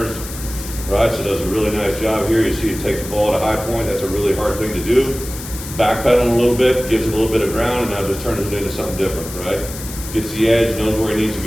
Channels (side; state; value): left; noise; hiss, 11 dB below the sound